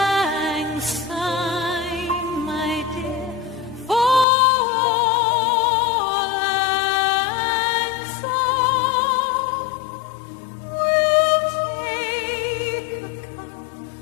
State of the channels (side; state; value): right; drops out; at 4.2 s